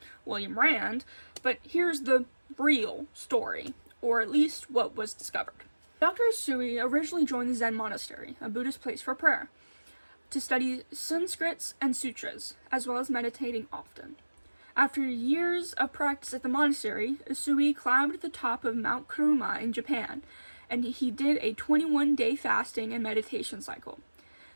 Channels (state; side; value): inverted; both; correlation -1.00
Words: William Rand, but here's the real story, or at least what was discovered. Dr. Usui originally joined the Zen monastery, a Buddhist place for prayer, to study Sanskrits and sutras, as well as meditating often. After years of practice at the monastery, Usui climbed to the top of Mount Kuruma in Japan, and he did a 21-day fasting and meditation cycle,